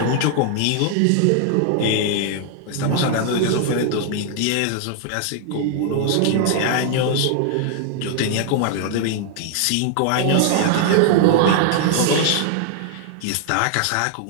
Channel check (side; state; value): both; different; correlation 0.00